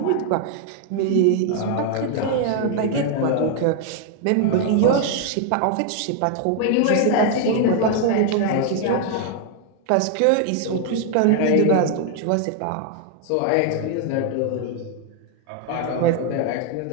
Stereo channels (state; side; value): different; both; correlation 0.00